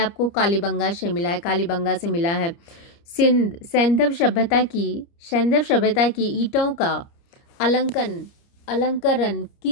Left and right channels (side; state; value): right; late; 29 ms